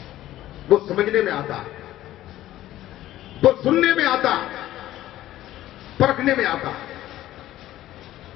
वो समझने में आता, वो सुनने में आता, परखने में आता।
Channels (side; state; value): right; quieter; 14.3 dB